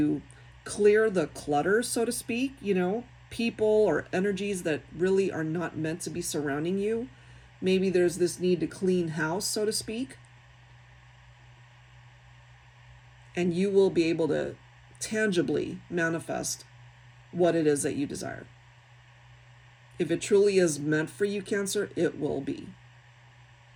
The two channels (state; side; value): identical; both; correlation 1.00